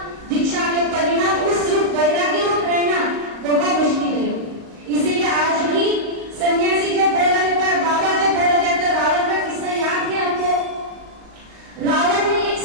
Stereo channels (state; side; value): late; left; 38 ms